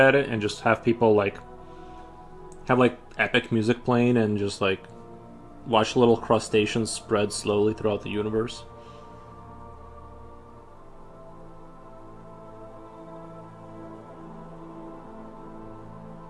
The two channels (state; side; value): identical; both; correlation 1.00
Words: it, and just have people like have like epic music playing, and just like watch little crustaceans spread slowly throughout the universe.